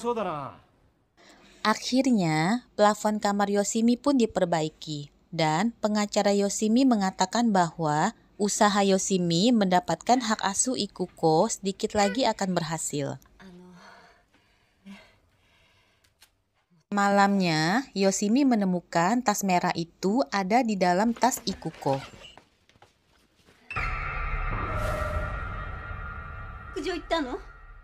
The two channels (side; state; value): both; identical; correlation 1.00